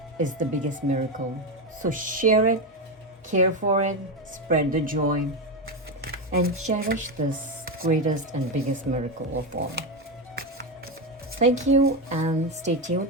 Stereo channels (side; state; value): both; normal; correlation 0.12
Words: is the biggest miracle. So share it, care for it, spread the joy, and cherish this greatest and biggest miracle of all. Thank you and stay tuned.